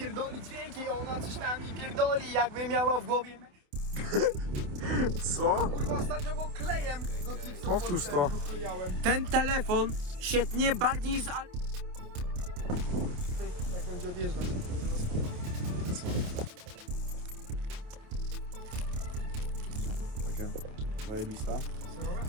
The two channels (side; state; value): left; late; 28 ms